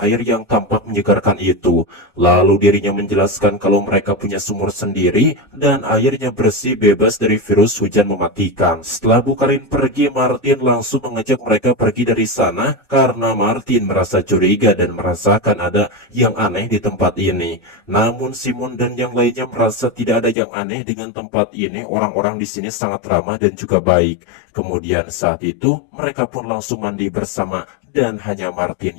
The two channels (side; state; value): right; drops out; at 20.4 s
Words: yang tampak menyegarkan itu. Lalu dirinya menjelaskan kalau mereka punya sumur sendiri dan airnya bersih bebas dari virus hujan mematikan. Setelah Bu Karin pergi, Martin langsung mengajak mereka pergi dari sana karena Martin merasa curiga dan merasakan ada yang aneh di tempat ini. Namun Simon dan yang lainnya merasa tidak ada yang aneh dengan tempat ini. Orang-orang di sini sangat ramah dan juga baik. Kemudian saat itu mereka pun langsung mandi bersama dan hanya Martin